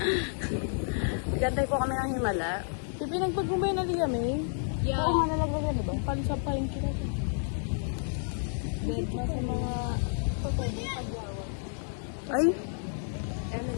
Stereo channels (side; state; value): right; silent; 57 dB below the other